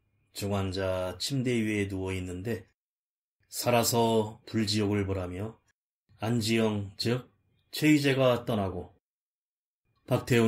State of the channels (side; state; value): both; identical; correlation 1.00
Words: 중환자 침대 위에 누워있는데 살아서 불지옥을 보라며 안지영 즉 최희재가 떠나고